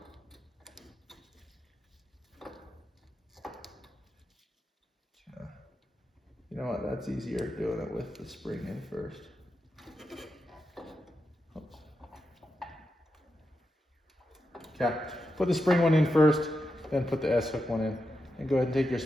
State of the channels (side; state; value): both; normal; correlation 0.87